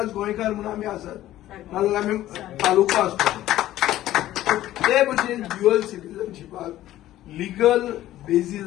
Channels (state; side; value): quieter; right; 14.1 dB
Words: गोंयकार म्हणून आमी आसात, नाजाल्यार आमी तालुको आसतलो. ते भशेन ड्युअल सिटीजनशिपाक लिगल